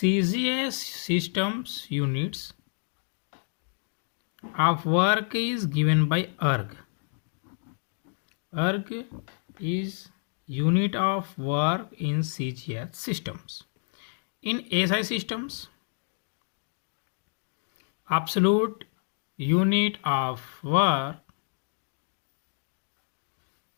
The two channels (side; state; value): right; silent; digital silence